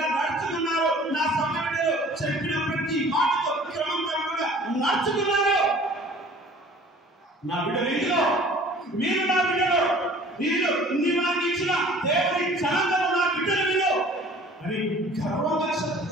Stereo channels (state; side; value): normal; both; correlation 0.49